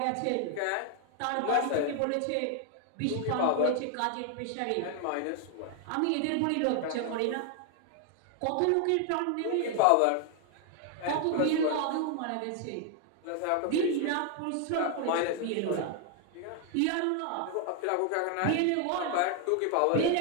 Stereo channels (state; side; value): different; both; correlation 0.00